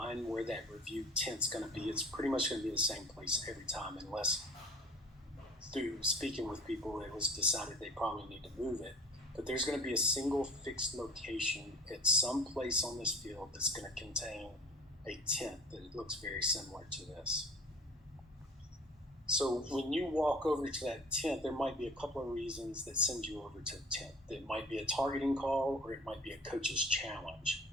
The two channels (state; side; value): normal; both; correlation 0.44